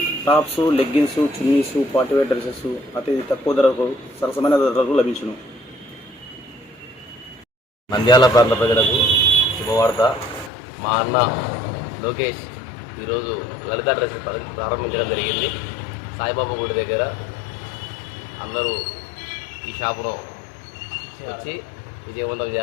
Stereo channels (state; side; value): drops out; right; at 10.5 s